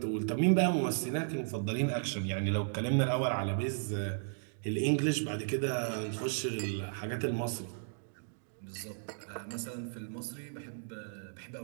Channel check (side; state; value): left; silent; digital silence